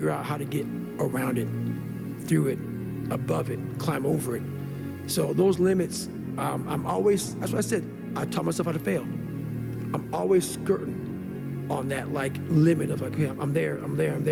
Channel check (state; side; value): identical; both; correlation 1.00